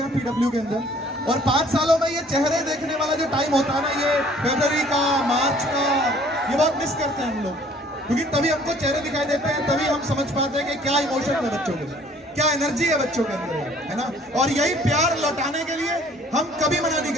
हैं पीडब्ल्यू के अंदर, और 5 सालों में ये चेहरे देखने वाला जो टाइम होता है ना, ये फरवरी का, मार्च का, ये बहुत मिस करते हैं हम लोग, क्योंकि तभी हमको चेहरे दिखाई देते हैं, तभी हम समझ पाते हैं कि क्या इमोशन है बच्चों के, क्या एनर्जी है बच्चों के अंदर, है ना। और यही प्यार लौटाने के लिए हम कभी मना नहीं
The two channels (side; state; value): both; normal; correlation 0.56